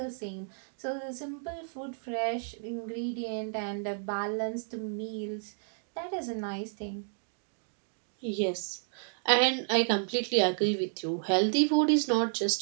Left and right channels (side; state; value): left; silent; digital silence